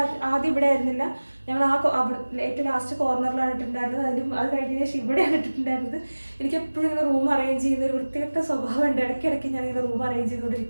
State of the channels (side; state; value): both; inverted; correlation -1.00